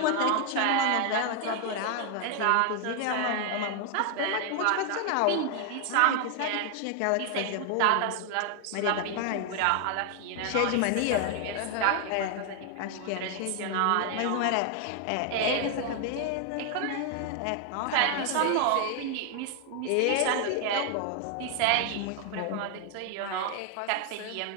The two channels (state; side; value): different; both; correlation 0.00